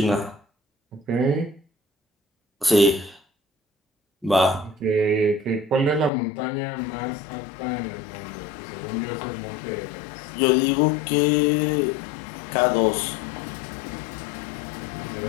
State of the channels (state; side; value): drops out; right; at 6.1 s